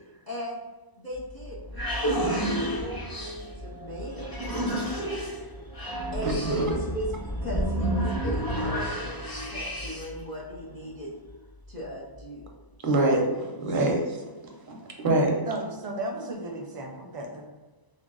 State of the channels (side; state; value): right; late; 1.0 ms